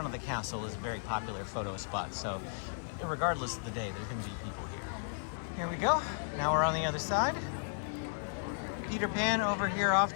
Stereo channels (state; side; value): silent; right; digital silence